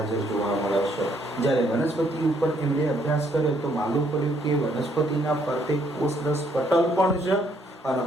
જોવા મળે છે. જ્યારે વનસ્પતિ ઉપર એમણે અભ્યાસ કર્યો તો માલુમ પડ્યું કે વનસ્પતિના ફરતે કોષરસ પટલ પણ છે અને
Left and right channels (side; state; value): both; normal; correlation 0.69